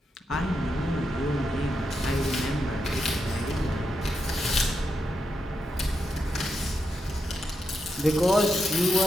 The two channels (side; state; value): both; normal; correlation 0.84